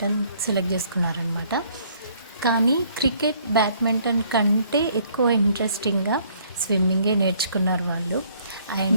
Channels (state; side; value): inverted; both; correlation -0.63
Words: సెలెక్ట్ చేసుకున్నారనమాట. కానీ క్రికెట్, బ్యాడ్మింటన్ కంటే ఎక్కువ ఇంట్రెస్టింగ్గా స్విమ్మింగే నేర్చుకున్నారు వాళ్ళు.